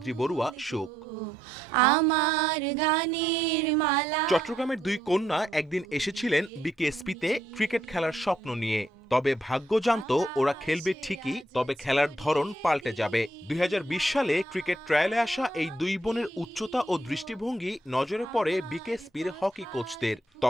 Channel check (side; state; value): both; normal; correlation 0.76